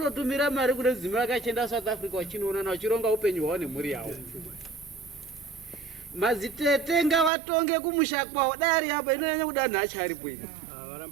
mari kune dzimwe vakachienda south africa vachinoonana vachironga upenyu hwavo nemhuri yavo madzitete ngavatonge kumusha kwavo dari apa inonyanya kuda nhacha aripo ini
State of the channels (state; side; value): drops out; left; at 7.3 s